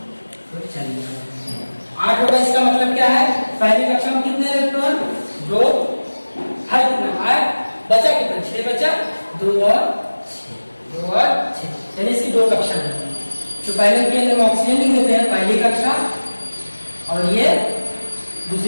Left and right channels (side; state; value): both; inverted; correlation -1.00